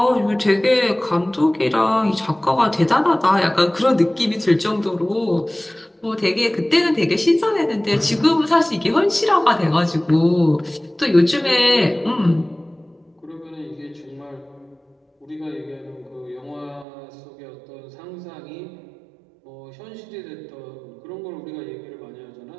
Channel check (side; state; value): left; drops out; at 16.9 s